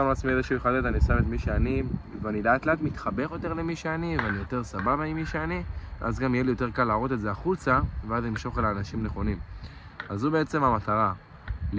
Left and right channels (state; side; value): identical; both; correlation 1.00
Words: לעצמי איזשהו חדד, אני שם את מי שאני, ואני לאט לאט מתחבר יותר למי שאני, ואני יותר סבבה עם מי שאני, אז גם יהיה לי יותר קל להראות את זה החוצה, ואז אני אמשוך אל האנשים נכונים. אז זו בעצם המטרה,